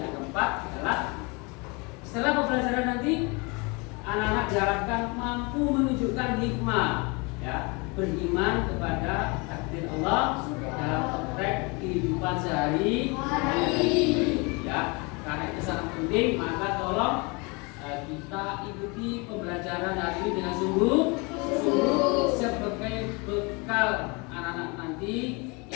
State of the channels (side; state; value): right; quieter; 29.1 dB